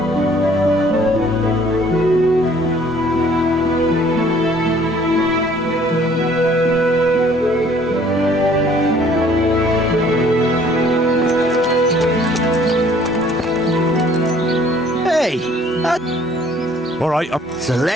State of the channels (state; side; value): normal; both; correlation 0.57